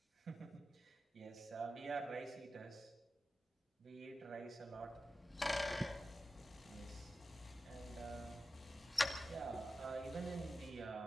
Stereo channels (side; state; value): both; normal; correlation 0.92